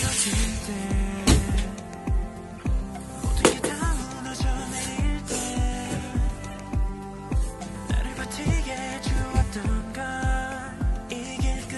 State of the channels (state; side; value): identical; both; correlation 1.00